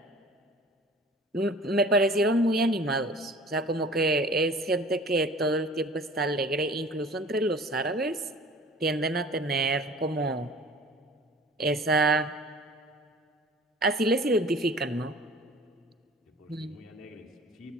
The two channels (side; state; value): both; normal; correlation 0.45